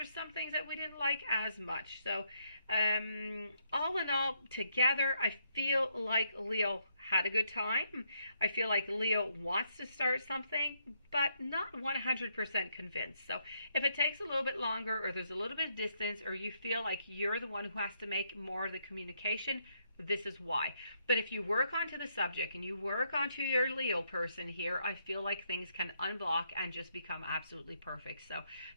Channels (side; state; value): both; inverted; correlation -0.76